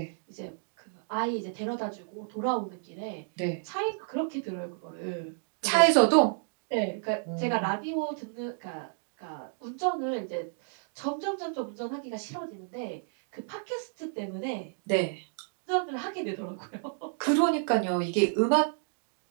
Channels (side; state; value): left; silent; digital silence